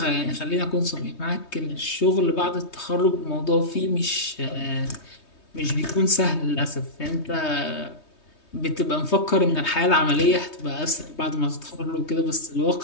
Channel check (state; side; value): late; right; 3.2 ms